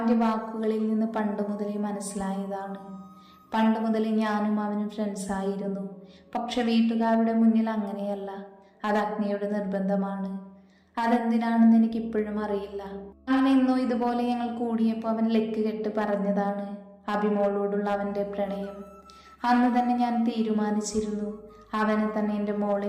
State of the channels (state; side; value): identical; both; correlation 1.00